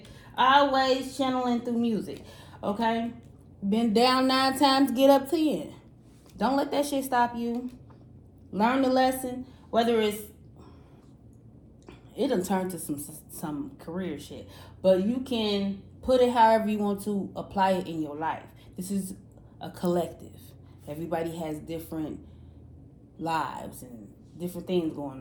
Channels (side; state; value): both; identical; correlation 1.00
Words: Always channeling through music, okay? Been down 9 times, get up 10. Don't let that shit stop you. Learn the lesson, whether it done turned to some career shit, but you can put it however you want to apply it in your life. This is a collective. Everybody has different lives and different things going